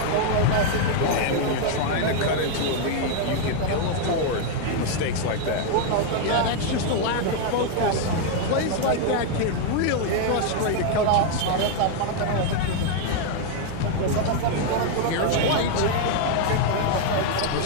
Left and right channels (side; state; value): both; different; correlation 0.00